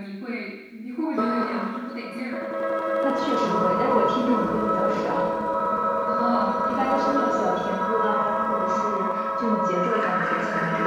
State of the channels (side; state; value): both; identical; correlation 1.00